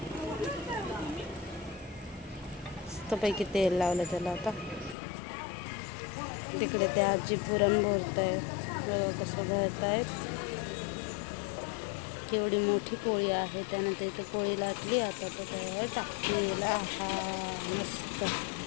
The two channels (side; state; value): right; drops out; at 5.0 s